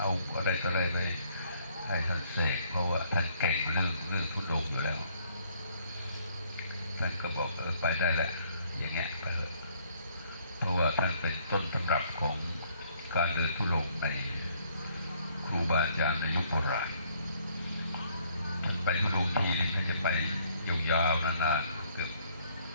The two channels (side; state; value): both; inverted; correlation -0.65